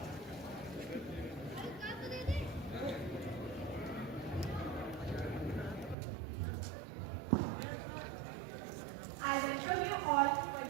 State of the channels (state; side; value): drops out; left; at 6.0 s